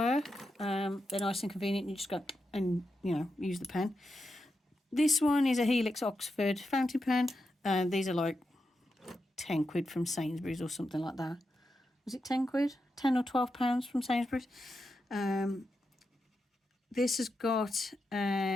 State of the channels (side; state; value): both; normal; correlation 0.87